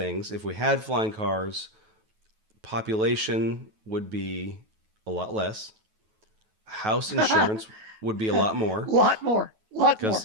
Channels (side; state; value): left; late; 9.2 ms